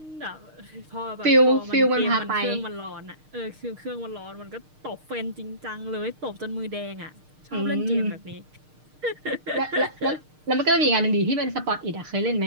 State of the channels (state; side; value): late; left; 6.5 ms